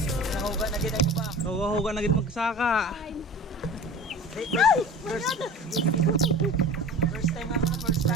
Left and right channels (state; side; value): normal; both; correlation 0.38